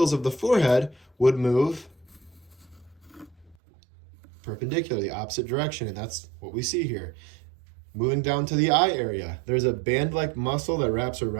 of the forehead would move perpendicular, the opposite direction, and that's what we see here. Moving down to the eye area, there's a band-like muscle that wraps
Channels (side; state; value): left; drops out; at 3.6 s